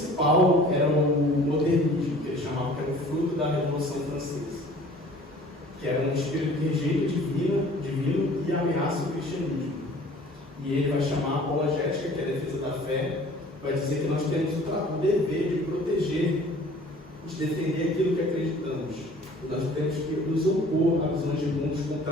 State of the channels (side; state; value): both; normal; correlation 0.49